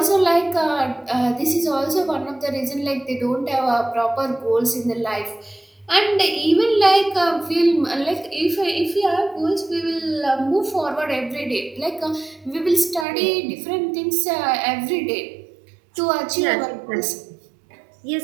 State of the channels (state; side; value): drops out; left; at 13.1 s